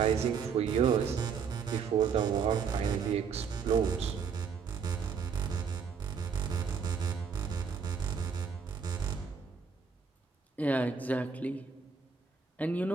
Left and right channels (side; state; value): left; quieter; 6.1 dB